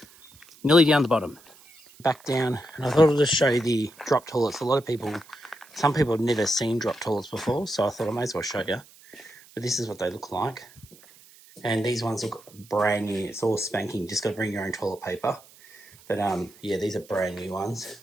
Nearly down the bottom. Back down, and I thought I'd just show you the drop toilets. Some people have never seen drop toilets before, so I thought I may as well show you. But this is what they look like. And these ones look brand new. It's all spanking. Just got to bring your own toilet paper. But yeah, these are brand new ones.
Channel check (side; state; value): right; noise; hiss, 24 dB below the sound